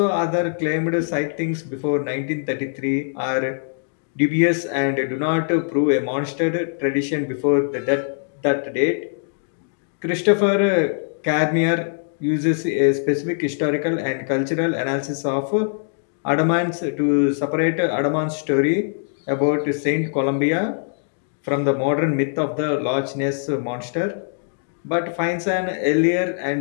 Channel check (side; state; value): right; silent; digital silence